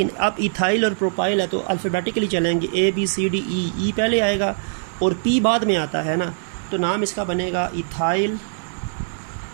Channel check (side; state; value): left; silent; digital silence